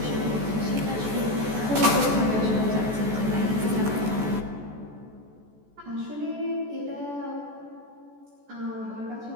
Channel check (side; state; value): left; late; 14 ms